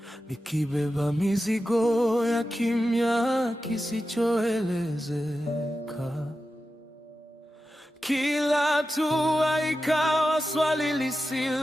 nikibeba mizigo ya kimya kisichoelezeka. Kila hatua ikawa swali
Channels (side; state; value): both; normal; correlation 0.92